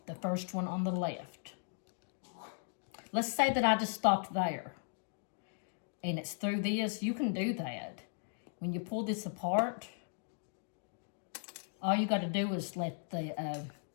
the first one on the left. Let's say that I just stopped there, and it's through this. You can do that. When you pull this apart, all you got to do is let the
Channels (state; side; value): silent; right; digital silence